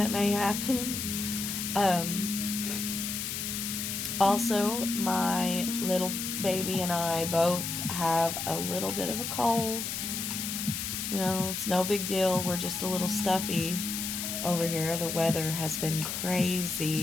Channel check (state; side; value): noise; left; hiss, 3 dB below the sound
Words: may happen. Also, my little baby and I both have a little bit of a cold. You know, it's no big deal. We're just a little stuffy over here. The weather has been